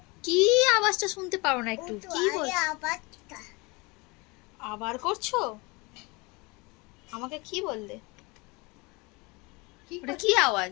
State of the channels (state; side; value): quieter; right; 26.3 dB